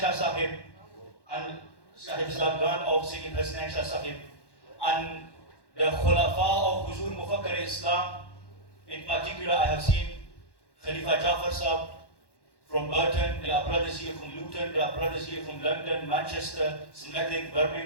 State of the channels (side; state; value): right; late; 1.1 ms